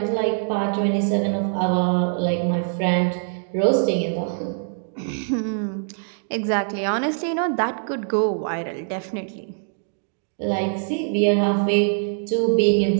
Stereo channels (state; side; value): silent; left; digital silence